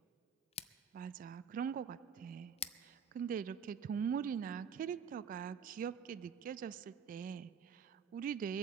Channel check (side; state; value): left; quieter; 6.5 dB